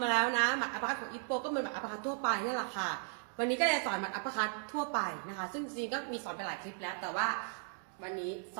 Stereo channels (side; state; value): left; silent; 54 dB below the other